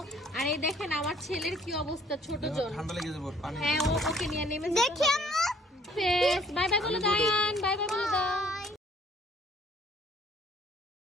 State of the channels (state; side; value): normal; both; correlation 0.60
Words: আর এই দেখেন আমার ছেলের কি অবস্থা, ছোট জন। ঠান্ডা লেগে যাবে, পানি। হ্যাঁ, ওকে নিয়ে নেমে দেখি আম্মু। বাই বাই বলে দাও।